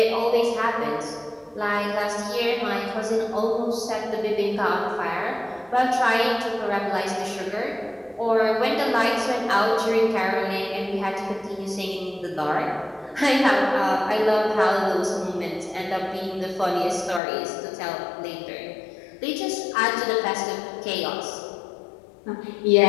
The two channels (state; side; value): drops out; right; at 17.2 s